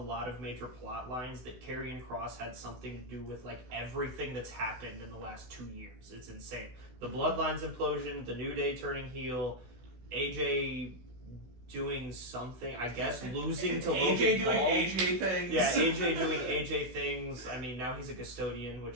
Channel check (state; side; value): late; left; 16 ms